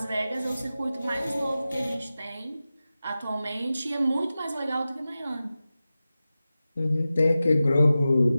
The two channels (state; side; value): inverted; both; correlation -0.95